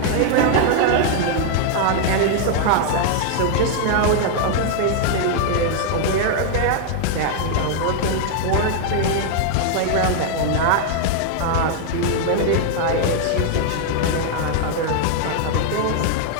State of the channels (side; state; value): both; different; correlation 0.00